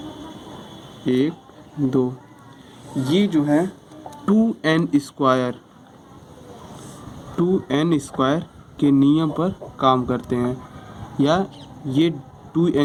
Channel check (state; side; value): identical; both; correlation 1.00